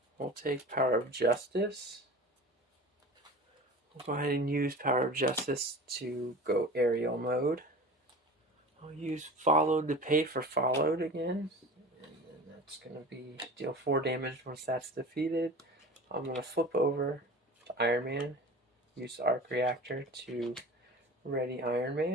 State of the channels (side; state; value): both; normal; correlation 0.37